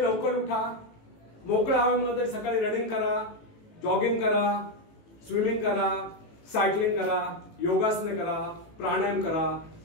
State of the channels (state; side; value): late; right; 18 ms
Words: लवकर उठा, मोकळ्या हवेमध्ये सकाळी रनिंग करा, जॉगिंग करा, स्विमिंग करा, सायकलिंग करा, योगासने करा, प्राणायाम करा,